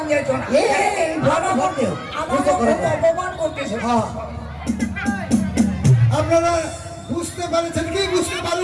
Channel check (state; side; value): identical; both; correlation 1.00